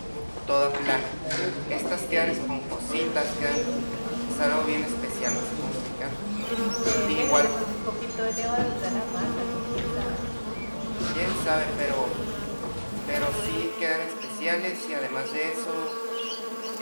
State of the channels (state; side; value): inverted; both; correlation -1.00